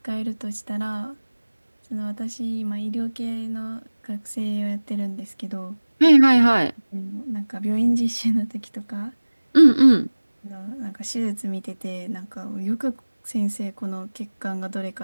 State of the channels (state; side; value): inverted; both; correlation -1.00